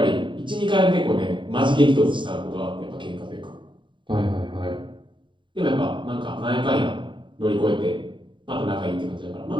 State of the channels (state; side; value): late; left; 0.23 ms